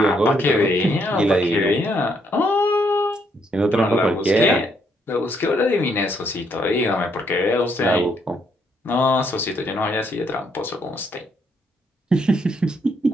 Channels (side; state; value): both; normal; correlation 0.72